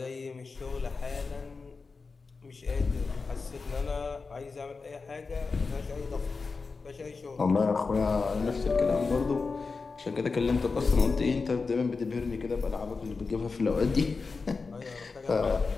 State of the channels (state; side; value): quieter; right; 4.4 dB